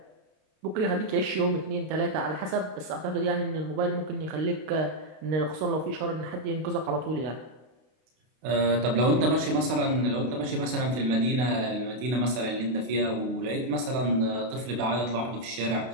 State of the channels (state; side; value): late; left; 32 ms